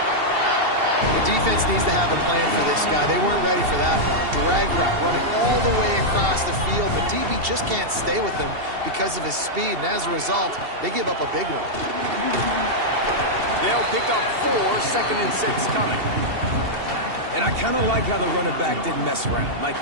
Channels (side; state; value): left; late; 2.7 ms